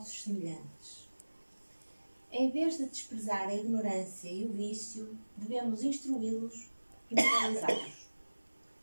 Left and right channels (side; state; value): both; inverted; correlation -1.00